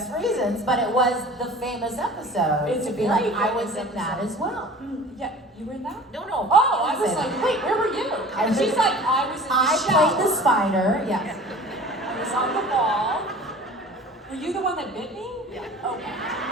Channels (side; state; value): both; normal; correlation 0.43